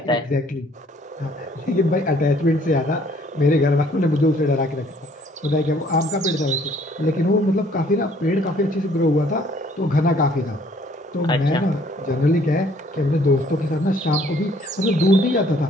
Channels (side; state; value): both; normal; correlation 0.60